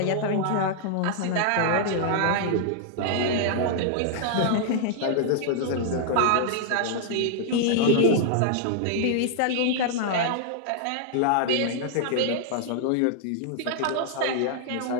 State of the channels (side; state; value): both; different; correlation -0.01